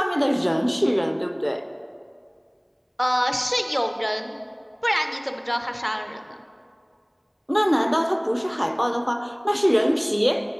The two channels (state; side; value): identical; both; correlation 1.00